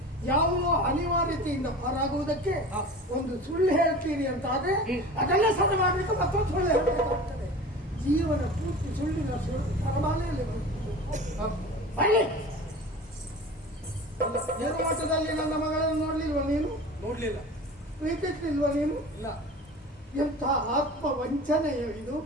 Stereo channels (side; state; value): both; normal; correlation 0.36